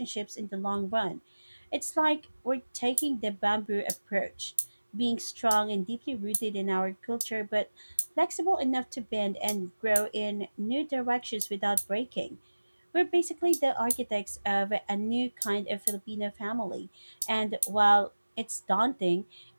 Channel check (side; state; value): both; inverted; correlation -1.00